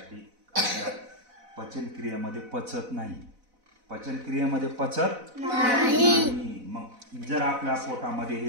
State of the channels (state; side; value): late; left; 4.0 ms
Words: आपल्या पचनक्रियेमध्ये पचत नाही. पचनक्रियेमध्ये पचत नाही. मग जर आपल्या पोटामध्ये